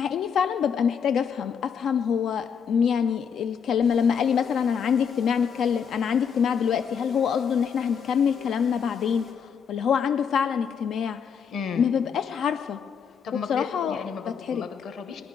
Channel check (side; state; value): right; quieter; 7.0 dB